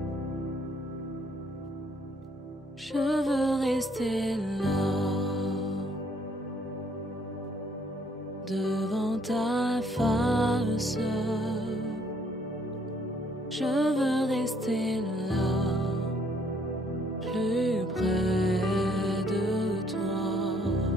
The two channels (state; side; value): normal; both; correlation 0.65